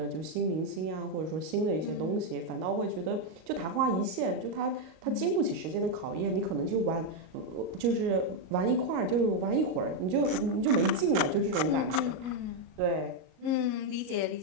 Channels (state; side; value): late; left; 38 ms